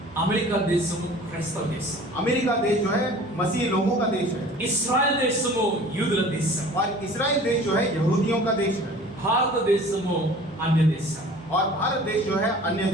అమెరికా దేశము క్రైస్తవ దేశం, अमेरिका देश जो है मसीह लोगों का देश है। ఇస్రాయెల్ దేశము యూదుల దేశం, और इस्राएल देश जो है यहूदियों का देश है। భారతదేశము అన్య దేశం. और भारत देश जो है अन्य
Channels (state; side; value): normal; both; correlation 0.45